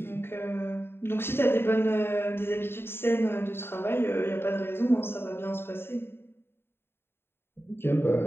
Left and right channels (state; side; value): late; right; 0.11 ms